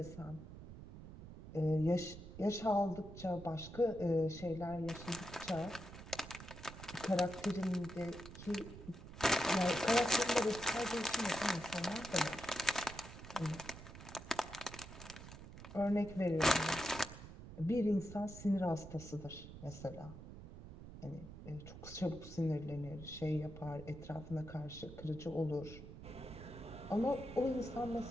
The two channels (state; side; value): noise; right; rumble, 13 dB below the sound